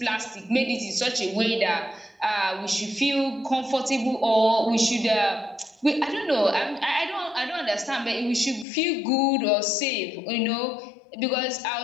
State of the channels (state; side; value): drops out; right; at 8.7 s